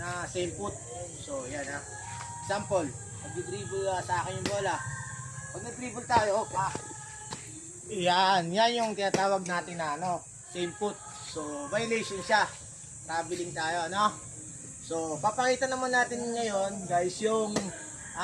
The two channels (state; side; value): identical; both; correlation 1.00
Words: same foot. So, yan ha. Example, mag-dribble sa akin yung bola. Pag nag-dribble tayo, yan yung tinatawag natin na same foot. So, violation siya. Traveling tayo, no? So, papakita naman natin ngayon, guys, yung